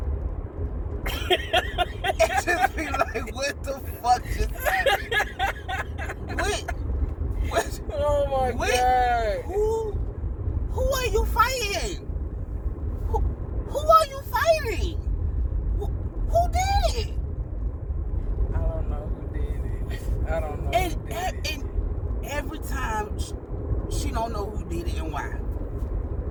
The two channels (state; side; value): identical; both; correlation 1.00